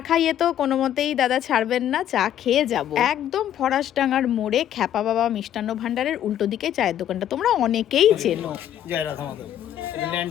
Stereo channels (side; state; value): right; quieter; 10.9 dB